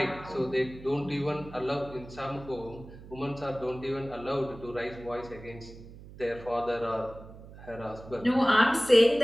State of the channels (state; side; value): noise; right; hum, 17 dB below the sound